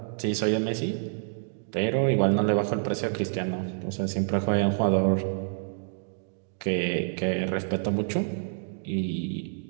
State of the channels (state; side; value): silent; left; digital silence